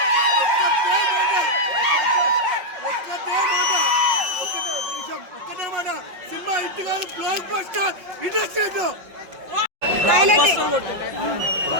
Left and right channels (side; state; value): left; late; 5.5 ms